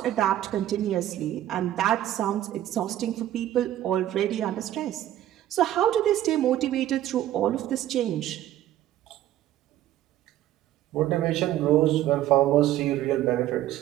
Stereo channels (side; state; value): left; quieter; 13.0 dB